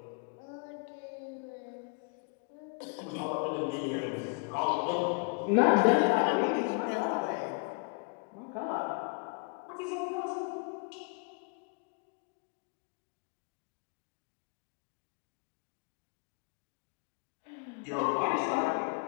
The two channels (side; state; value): right; quieter; 36.4 dB